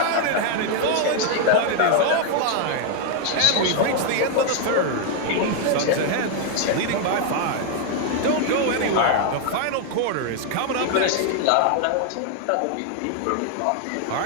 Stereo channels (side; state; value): both; different; correlation 0.00